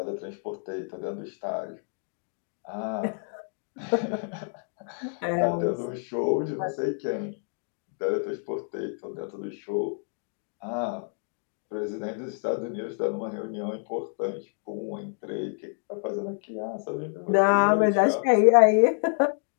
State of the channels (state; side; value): silent; right; 57 dB below the other